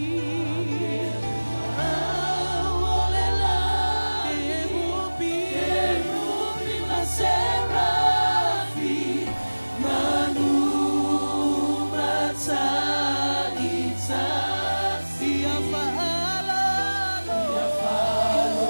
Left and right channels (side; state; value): both; inverted; correlation -1.00